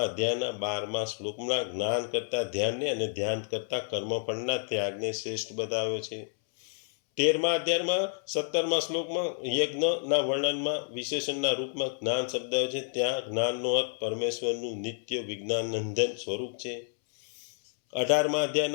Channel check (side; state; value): right; silent; 58 dB below the other